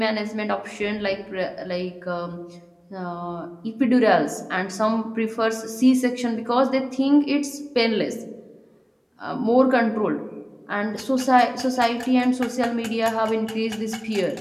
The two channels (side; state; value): both; identical; correlation 1.00